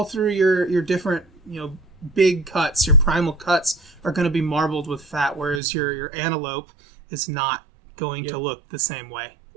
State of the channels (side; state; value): left; drops out; at 5.6 s